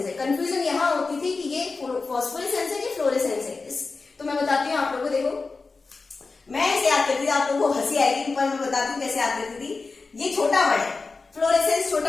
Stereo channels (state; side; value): quieter; right; 4.1 dB